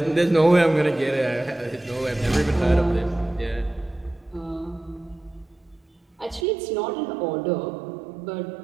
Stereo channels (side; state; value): left; drops out; at 6.5 s